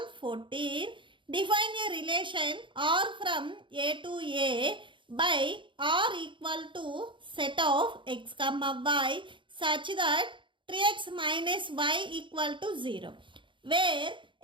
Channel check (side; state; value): left; late; 0.24 ms